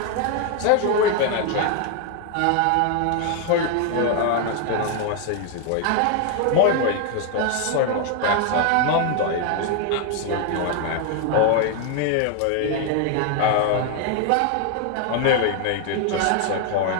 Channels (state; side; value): different; both; correlation 0.00